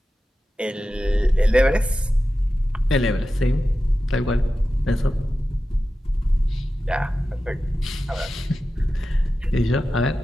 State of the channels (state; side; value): normal; both; correlation 0.93